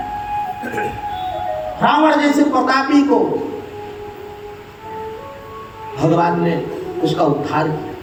रावण जैसे प्रतापी को भगवान ने उसका उद्धार किया।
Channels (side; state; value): both; identical; correlation 1.00